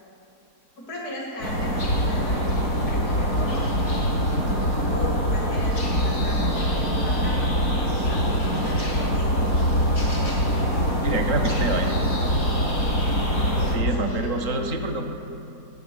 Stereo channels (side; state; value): right; late; 4.2 ms